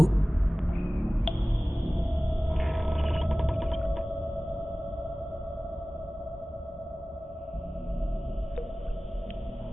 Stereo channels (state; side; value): normal; both; correlation 0.98